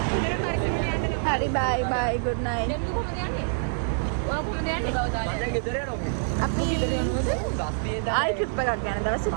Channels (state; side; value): silent; left; digital silence